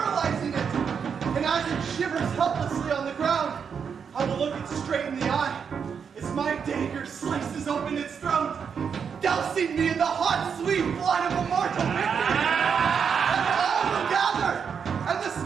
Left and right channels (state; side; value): quieter; left; 6.7 dB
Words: it. And as it shivers helplessly on the ground, I will look it straight in the eye as my dagger slices open its throat, dousing me in the hot, sweet blood of immortal victory. And all will gather, and the